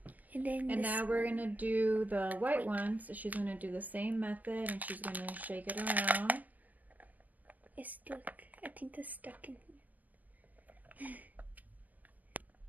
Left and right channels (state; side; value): late; left; 0.080 ms